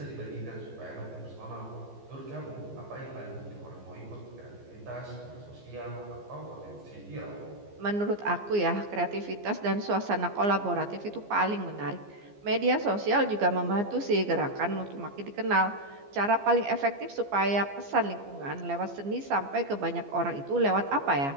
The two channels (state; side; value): late; left; 15 ms